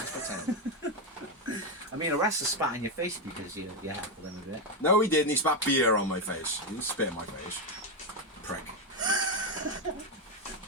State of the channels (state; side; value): normal; both; correlation 0.07